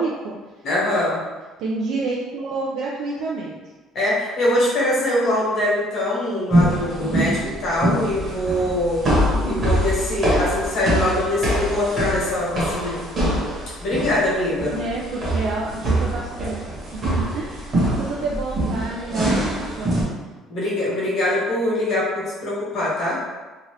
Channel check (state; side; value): normal; both; correlation 0.60